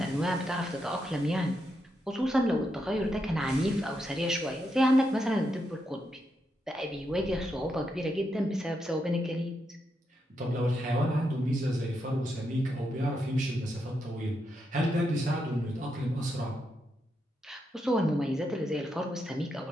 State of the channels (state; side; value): normal; both; correlation 0.83